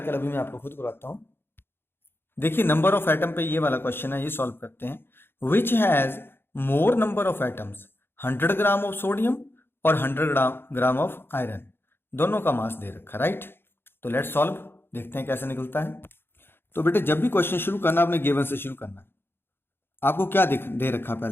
अभी मैं आपको खुद करवाता हूं। देखिए नंबर ऑफ एटम पे ये वाला क्वेश्चन है, ये सॉल्व करते हैं। Which has more number of atoms, 100 gram of sodium और 100 ग्राम ऑफ आयरन, दोनों का मास दे रखा, राइट। तो लेट्स सॉल्व, देखते हैं कैसे निकलता है। तो बेटे जब भी क्वेश्चन शुरू करना आपने गिवन से शुरू करना है। आपको क्या दे रखा,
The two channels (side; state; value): right; late; 0.11 ms